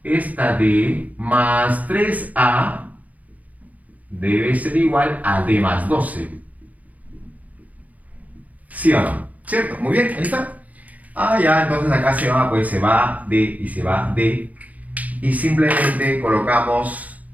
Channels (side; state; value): left; late; 0.075 ms